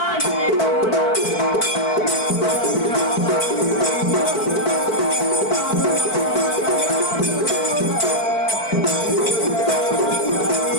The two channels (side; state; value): right; late; 4.5 ms